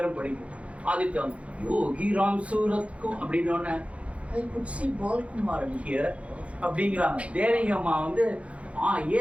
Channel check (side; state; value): left; late; 0.063 ms